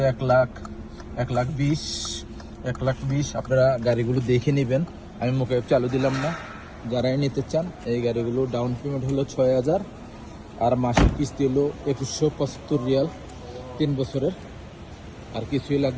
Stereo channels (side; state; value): both; identical; correlation 1.00